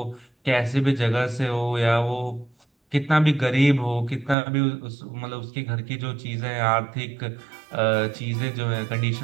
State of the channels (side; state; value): left; drops out; at 4.4 s